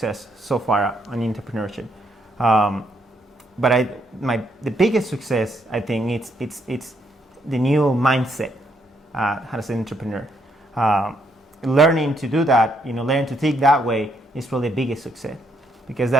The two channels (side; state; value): both; normal; correlation 0.74